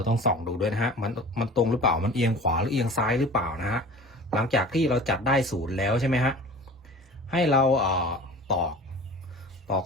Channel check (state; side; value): normal; both; correlation 0.40